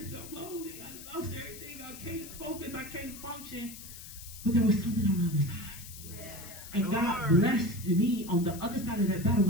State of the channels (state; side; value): noise; left; hiss, 14 dB below the sound